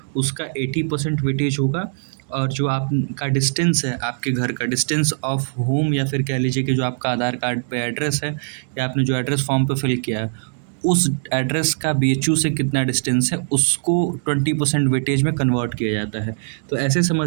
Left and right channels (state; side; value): silent; left; digital silence